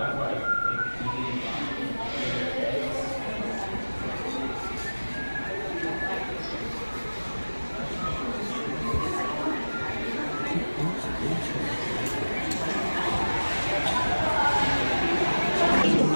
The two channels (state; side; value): inverted; both; correlation -1.00